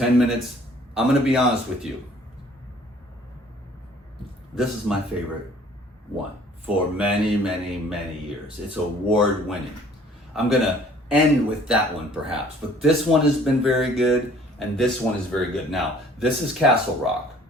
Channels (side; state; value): both; normal; correlation 0.55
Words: minutes. I'm gonna be honest with you. This is my favorite one for many, many, many years. It's award winning. I'm gonna end with that one perhaps, but this one has been very good, and this one is very good. Now, this is Castle Rock.